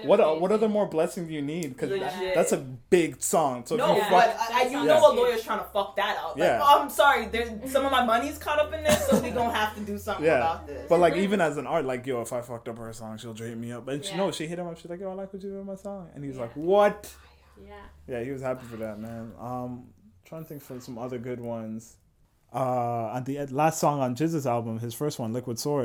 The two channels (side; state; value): both; identical; correlation 1.00